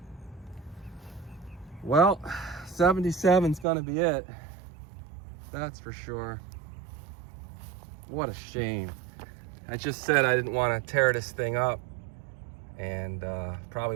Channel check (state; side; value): drops out; left; at 3.7 s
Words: Well, 77's gonna be it. That's for sure. What a shame. I just said I didn't want to tear this thing up, and